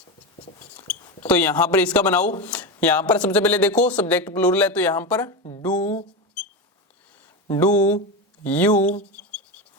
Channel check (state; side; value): normal; both; correlation 0.17